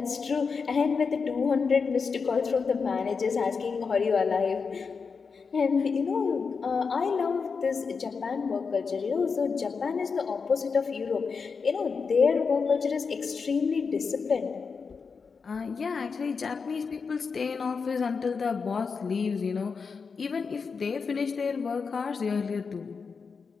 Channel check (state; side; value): quieter; right; 5.3 dB